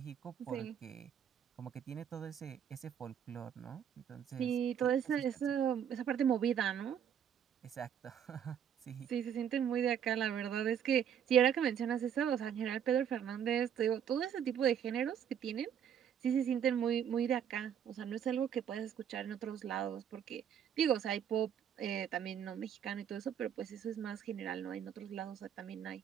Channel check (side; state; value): left; quieter; 8.7 dB